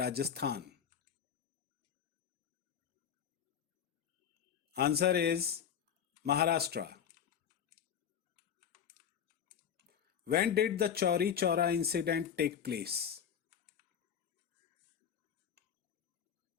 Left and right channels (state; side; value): quieter; right; 8.4 dB